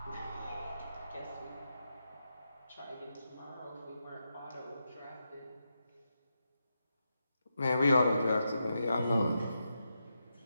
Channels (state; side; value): inverted; both; correlation -0.86